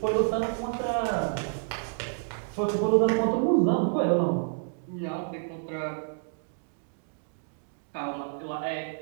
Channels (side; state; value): left; silent; digital silence